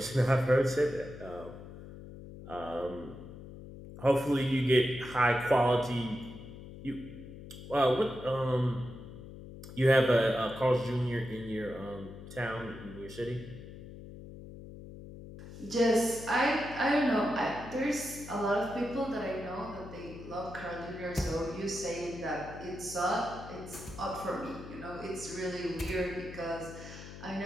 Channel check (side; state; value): left; noise; hum, 14 dB below the sound